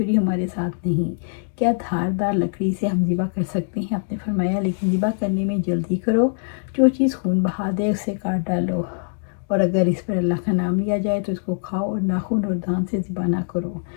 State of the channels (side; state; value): right; silent; digital silence